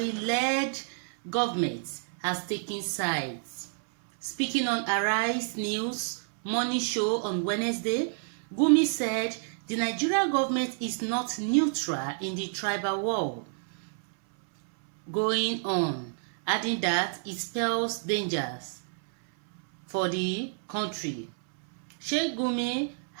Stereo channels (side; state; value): left; silent; 59 dB below the other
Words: government has taken sides. Speaking on Arise News morning show on Wednesday, Gumi said the Nigerian government is not neutral in the tribal war going on, adding that it spells dangers for the country. Sheikh Gumi